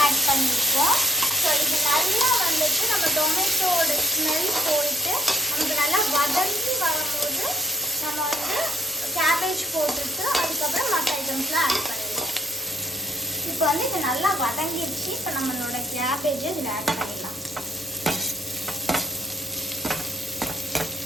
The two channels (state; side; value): normal; both; correlation 0.64